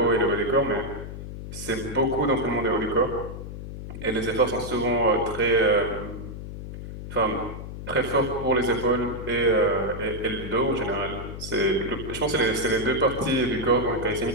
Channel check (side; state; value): left; noise; hum, 9 dB below the sound